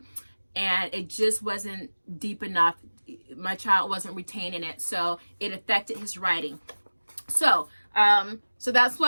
and it just wasn't deep enough. My child wasn't retaining it, so it affected his writing. So that's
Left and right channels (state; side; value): inverted; both; correlation -1.00